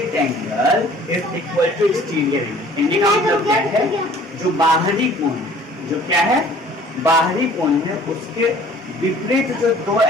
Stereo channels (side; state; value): both; normal; correlation 0.52